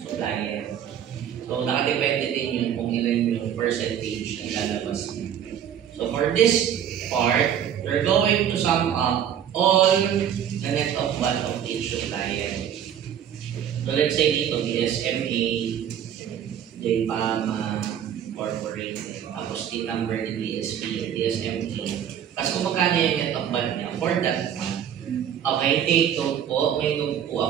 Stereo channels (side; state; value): left; quieter; 9.4 dB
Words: So, nakadepende din yun kung ilan yung percentage na ilalabas niya. So, for this part, we're going to sum up all the net of what of each supplier. So, let's say dito, DSMA, JPAMA, Corporate, tapos the number ni DSP, DSMA. Tapos kung magkano yung net of what niya for that month. Okay, take note po. May note po